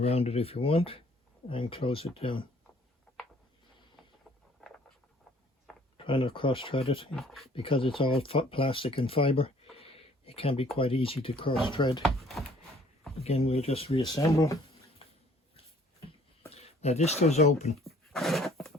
it if you want, and close it down. Try not cross thread it, because it's all plastic and fibre. It can be quite easy to cross thread. Again, we'll just reassemble. Now this does open.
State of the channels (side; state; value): both; normal; correlation 0.58